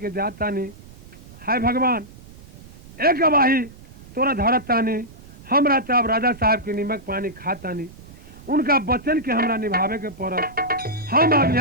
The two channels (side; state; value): right; noise; rumble, 19 dB below the sound